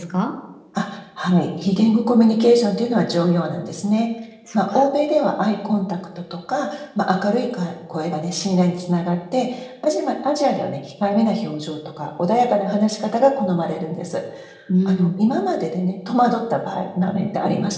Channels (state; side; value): identical; both; correlation 1.00